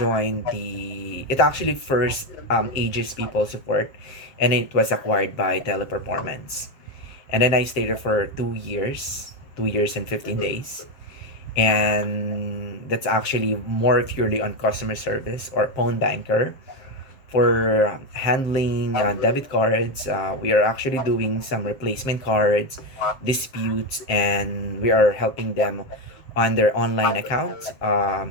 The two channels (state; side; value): late; right; 7.6 ms